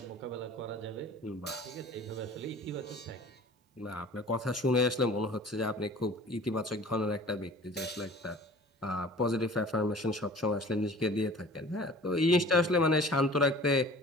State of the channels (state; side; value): normal; both; correlation 0.45